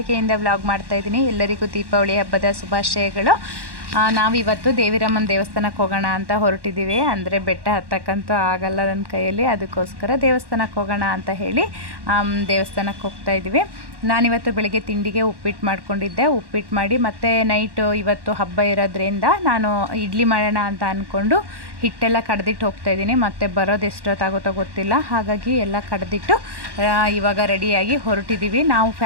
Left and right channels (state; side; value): late; left; 1.1 ms